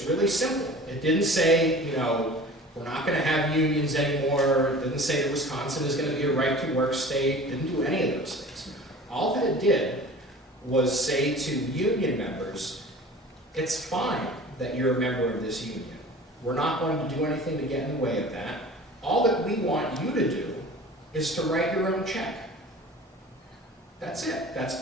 really simple, it didn't say, we're not going to have unions anymore, it didn't say that Wisconsin is going to be a right-to-work state, it didn't do any of those things. All that it did was say to union members, it's fine that you're a member of this union. We're not going to do anything to get in the way of that. All that we want you to do is to write your own check. That's it.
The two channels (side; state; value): both; normal; correlation 0.41